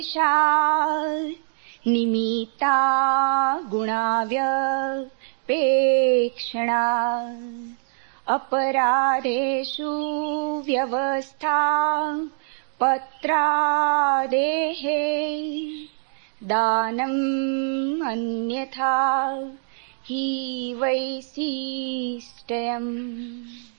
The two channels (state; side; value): silent; left; digital silence